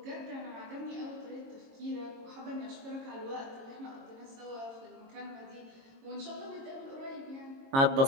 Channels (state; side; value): late; left; 22 ms